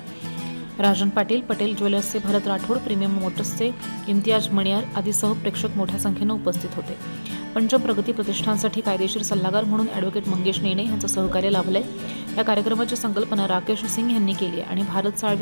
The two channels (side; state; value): both; inverted; correlation -1.00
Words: राजन पाटील, पटेल ज्वेलर्सचे भरत राठोड, प्रीमियम मोटर्सचे इम्तियाज मणियार आदीसह प्रेक्षक मोठ्या संख्येने उपस्थित होते। पंचम प्रगती प्रतिष्ठानसाठी कायदेशीर सल्लागार म्हणून ॲडव्होकेट मंगेश नेने यांचं सहकार्य लाभलंय। या कार्यक्रमाची संकल्पना राकेश सिंग यांनी केली आहे आणि भारत